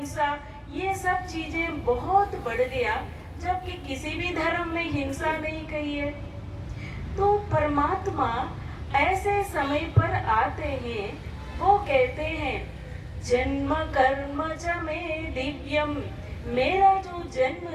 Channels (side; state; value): both; identical; correlation 1.00